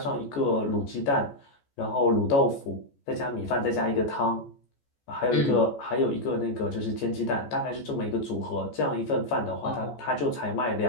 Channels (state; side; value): late; right; 14 ms